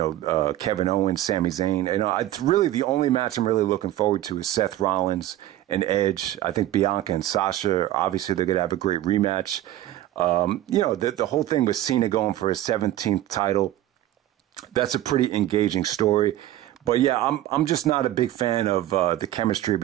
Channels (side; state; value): left; quieter; 13.9 dB